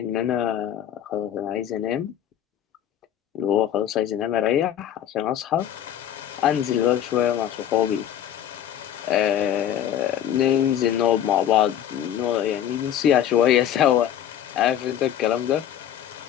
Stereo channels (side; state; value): right; quieter; 10.4 dB